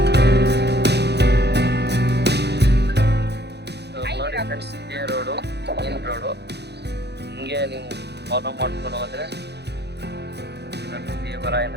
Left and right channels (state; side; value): late; left; 0.49 ms